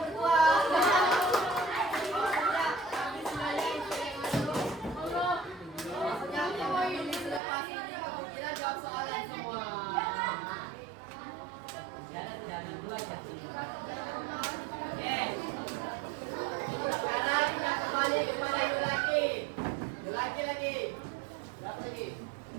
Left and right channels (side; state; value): left; drops out; at 7.4 s